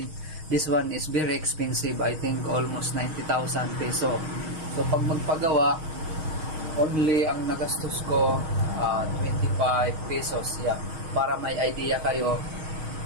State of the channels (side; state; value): left; late; 6.4 ms